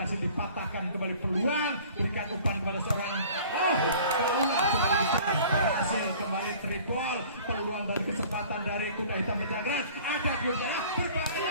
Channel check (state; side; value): inverted; both; correlation -0.48